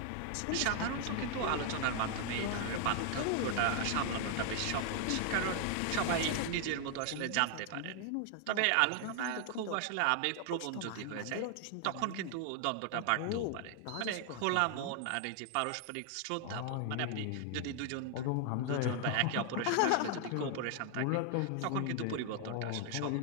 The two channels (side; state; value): both; different; correlation 0.00